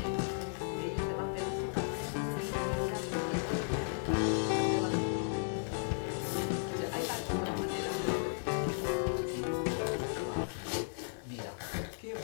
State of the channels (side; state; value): right; silent; digital silence